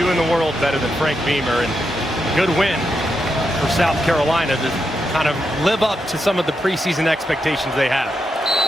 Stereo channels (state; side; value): normal; both; correlation 0.84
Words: in the world better than Frank Beamer, and a good win for South Carolina to kind of live up to some of the preseason expectations they have.